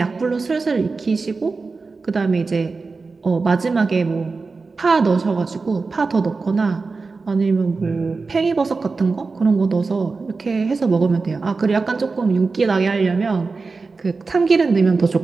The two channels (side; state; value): left; quieter; 4.2 dB